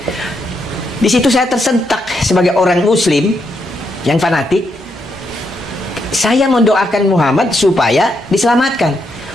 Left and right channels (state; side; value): normal; both; correlation 0.79